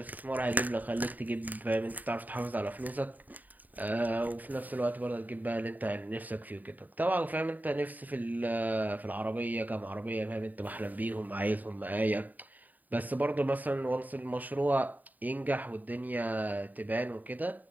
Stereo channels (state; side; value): late; left; 0.083 ms